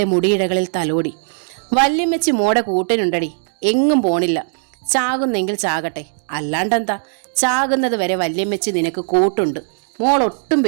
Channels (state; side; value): silent; left; digital silence